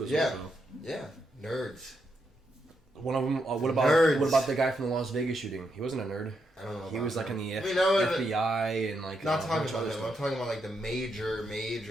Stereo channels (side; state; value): both; normal; correlation 0.81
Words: as well. Though. Yeah, nerds. One of them. What about the guy from the Las Vegas shooting? He wasn't a nerd. I don't know. He was in the FBI and Not talking about him. I'm talking about the